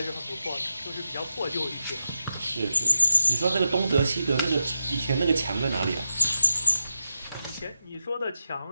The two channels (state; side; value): inverted; both; correlation -0.89